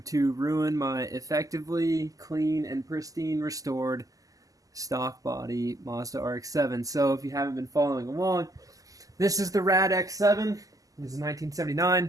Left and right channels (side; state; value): left; late; 0.17 ms